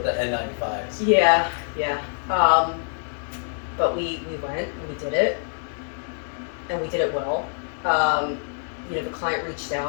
the N95s. Yeah. But we went and we did it, and we did it well. The client reached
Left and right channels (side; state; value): right; silent; 62 dB below the other